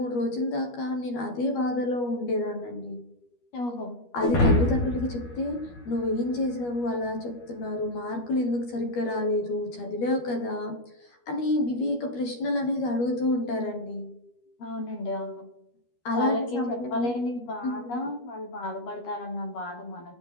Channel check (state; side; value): late; right; 12 ms